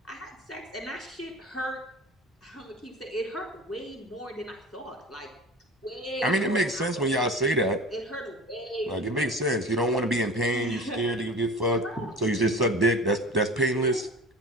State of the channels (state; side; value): normal; both; correlation 0.36